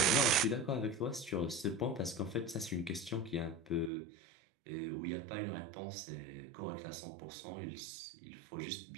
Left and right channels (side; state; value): left; drops out; at 3.9 s